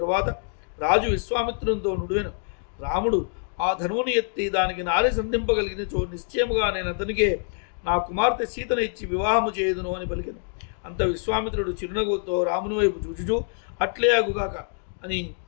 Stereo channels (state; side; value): silent; right; 61 dB below the other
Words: రాజు విశ్వామిత్రునితో నుడివెను. రాముడు ఆ ధనువుని ఎత్తి దానికి నారి సంధింపగలిగినచో నిశ్చయముగా నేను అతనికే నా కుమార్తె సీతను ఇచ్చి వివాహము చేయుదును అని పలికెను. అంత విశ్వామిత్రుడు చిరునవ్వుతో రాముని వైపు చూచుచూ అట్లే అగుగాక అని